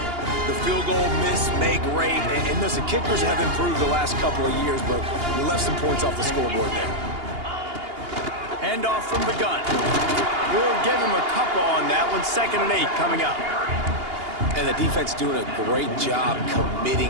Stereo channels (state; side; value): late; left; 2.8 ms